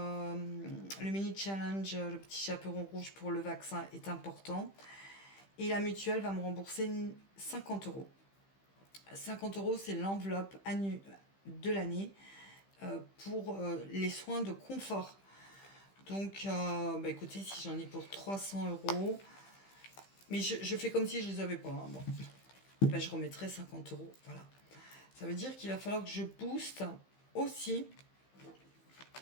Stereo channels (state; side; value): late; right; 15 ms